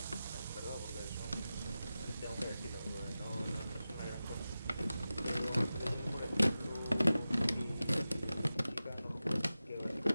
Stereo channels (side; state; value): both; inverted; correlation -0.94